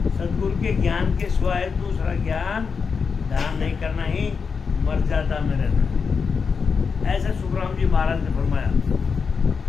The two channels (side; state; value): right; quieter; 5.6 dB